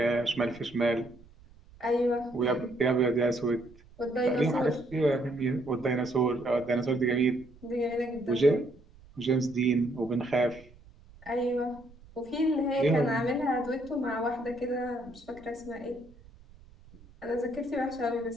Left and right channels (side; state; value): right; noise; rumble, 24 dB below the sound